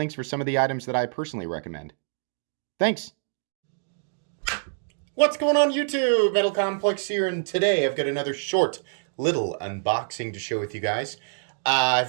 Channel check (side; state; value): left; silent; digital silence